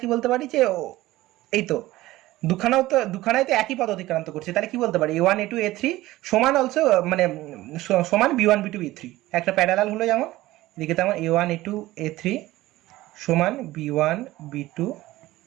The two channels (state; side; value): quieter; left; 17.2 dB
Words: কি বলতে পারি যে এই তো দুখানাই তো একই পথ অতিক্রান্ত করছে। তাহলে কি বলতে পারি A1 A2 A3 সমান অলসো মানে সমান B1 B2 B3, একটা প্যারালাল হলো যেমন এদিকে, তেমন A1 A2 A3 সমান B1 B2